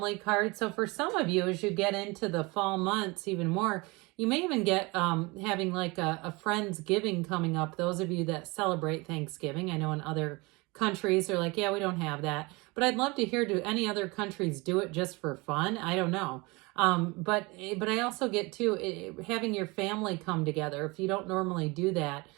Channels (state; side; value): quieter; left; 25.4 dB